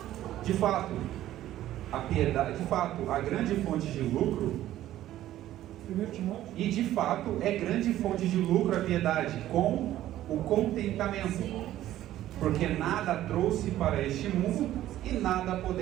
De fato, a grande fonte de lucro, 1 Timóteo. e de fato é grande fonte de lucro a piedade, com o contentamento, porque nada trouxe para este mundo e nada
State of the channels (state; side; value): quieter; left; 13.5 dB